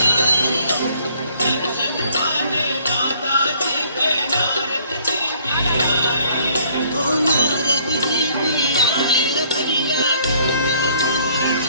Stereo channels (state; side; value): inverted; both; correlation -0.61